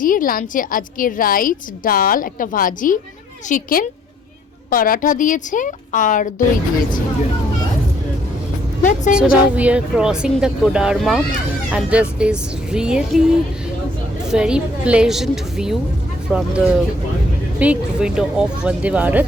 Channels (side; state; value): both; normal; correlation 0.64